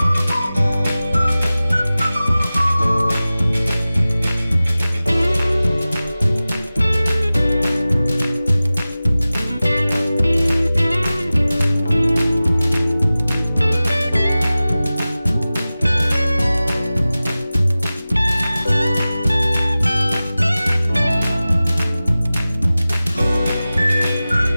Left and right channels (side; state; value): both; inverted; correlation -0.97